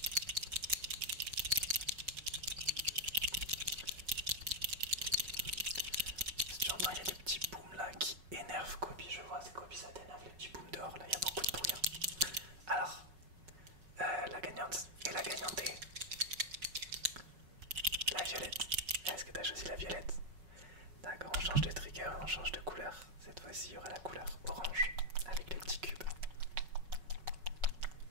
Si tu entends, il y a des petits booms là qui énervent Kobe. Je vois, c'est Kobe, ça t'énerve les petits booms dehors là, il y a beaucoup de bruit. Hein. Alors, la gagnante et la gagnantée. La violette. Est-ce que tu as choisi la violette? D'accord, on change de trigger, on change de couleur. Cette fois-ci, il y aura la couleur orange avec les petits cubes.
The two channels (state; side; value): late; left; 5.4 ms